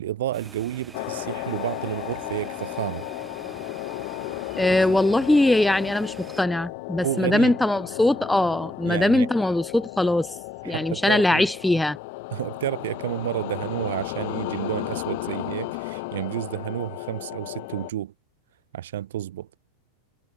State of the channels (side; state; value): both; normal; correlation 0.66